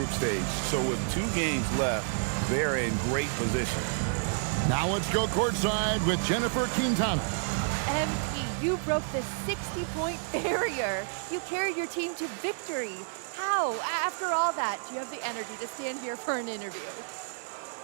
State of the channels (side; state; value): left; silent; 58 dB below the other